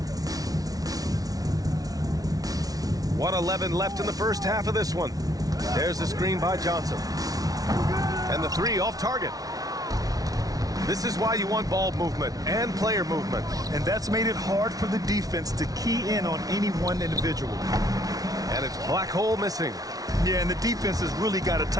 1:11 left in the first half of this one. There's the screen by Johnson. And the three off target. This is why you want ball movement and player movement. And that's made it hard for the defense to key in on any one individual. And it's Black Hole missing. Yeah, and the defense has really got to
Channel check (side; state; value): left; late; 0.18 ms